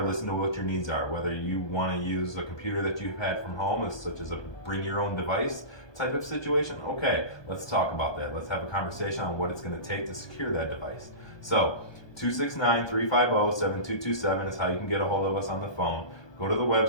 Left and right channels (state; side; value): late; right; 1.2 ms